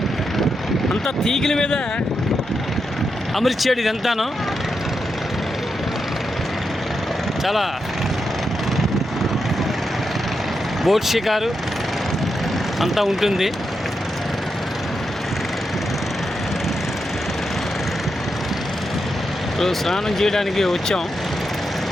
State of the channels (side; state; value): both; normal; correlation 0.85